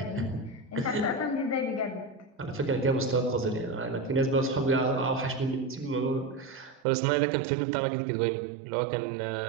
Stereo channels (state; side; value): drops out; left; at 6.9 s